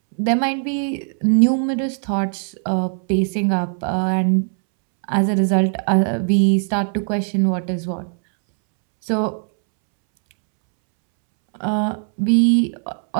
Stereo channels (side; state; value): left; silent; 66 dB below the other